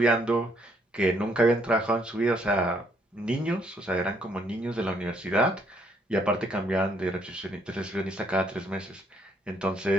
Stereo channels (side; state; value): both; normal; correlation 0.69